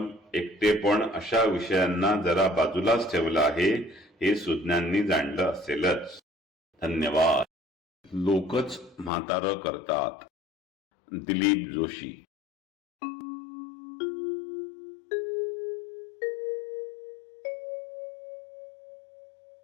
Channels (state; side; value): drops out; right; at 9.1 s